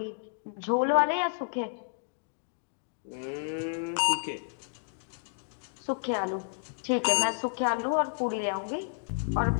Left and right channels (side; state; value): right; silent; digital silence